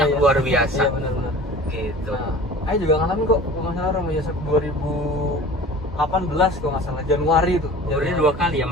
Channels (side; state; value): both; normal; correlation 0.42